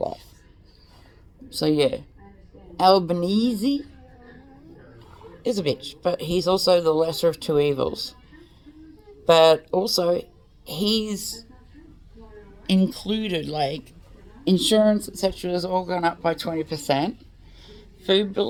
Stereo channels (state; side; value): identical; both; correlation 1.00